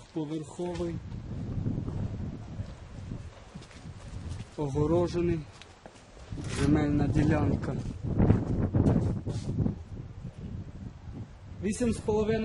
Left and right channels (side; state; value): both; identical; correlation 1.00